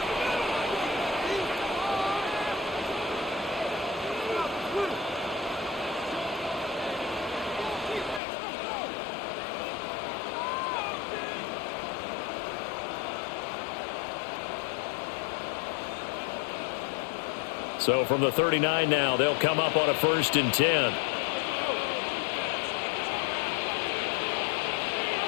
So from the 39 now, they'll come up on a 1st and 10.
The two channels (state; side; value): drops out; right; at 8.2 s